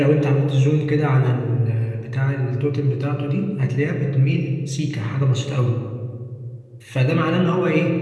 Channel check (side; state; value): both; identical; correlation 1.00